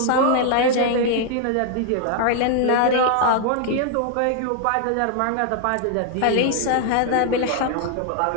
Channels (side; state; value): both; different; correlation 0.00